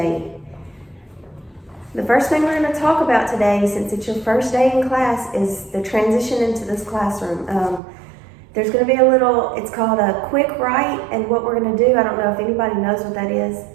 The first thing we're going to talk about today, since it's your first day in class, is the transition into this classroom. There's going to be a little, it's called a quick write, and what we're going to do, I don't know if anybody knows what that is.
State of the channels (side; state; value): left; drops out; at 7.8 s